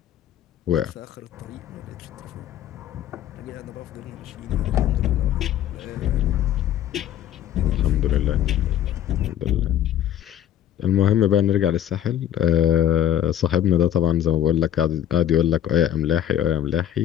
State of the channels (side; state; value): right; quieter; 11.0 dB